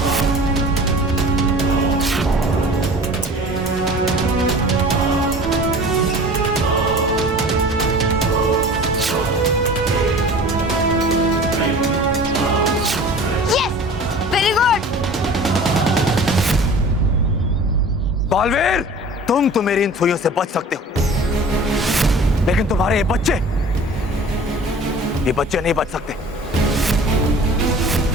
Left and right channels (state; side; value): normal; both; correlation 0.42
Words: बालवीर, तुम तो मेरी इन सुइयों से बच सकते हो, लेकिन तुम्हारे ये बच्चे नहीं बच सकते।